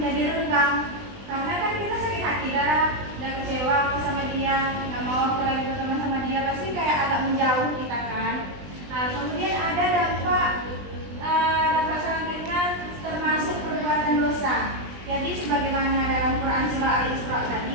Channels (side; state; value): left; late; 20 ms